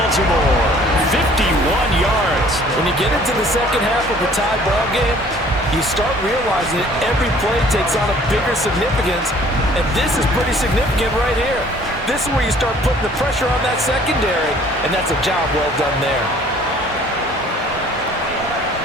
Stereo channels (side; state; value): both; normal; correlation 0.55